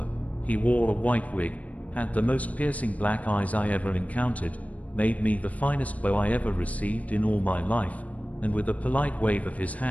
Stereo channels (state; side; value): late; right; 0.069 ms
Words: He wore a white wig, had the most piercing black eyes I ever encountered, made me the finest bow I ever received in all my life, and with a polite wave of his